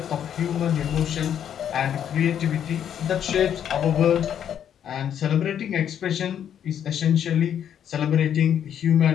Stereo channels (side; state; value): right; quieter; 9.3 dB